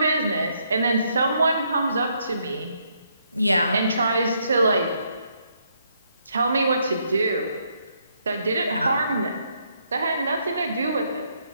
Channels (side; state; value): both; inverted; correlation -0.74